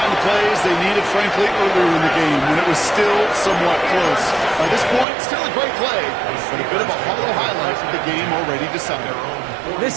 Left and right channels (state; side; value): drops out; left; at 5.1 s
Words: of plays they needed, frankly, earlier in the game when it was still somewhat close. By this point, still a great play, but a bit of a hollow highlight of the game already decided. The